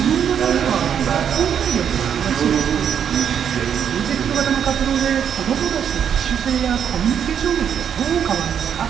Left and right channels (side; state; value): left; quieter; 8.4 dB